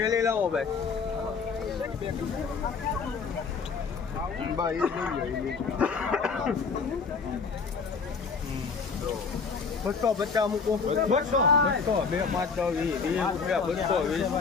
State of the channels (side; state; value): right; quieter; 5.1 dB